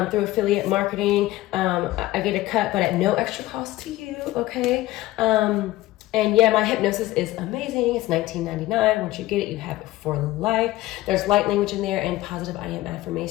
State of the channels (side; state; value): right; quieter; 16.9 dB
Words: affiliate marketing. I get a cut, but at no extra cost to you, okay? And yeah, my hypnosis is amazing. It's $19.99. Once you get it, you have it for life. There's light language in there and positive I am